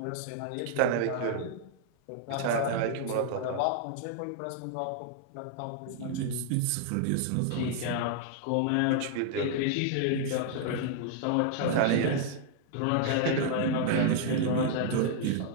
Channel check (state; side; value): different; both; correlation -0.01